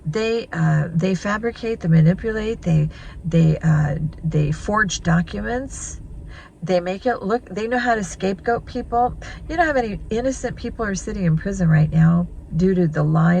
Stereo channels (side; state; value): both; identical; correlation 1.00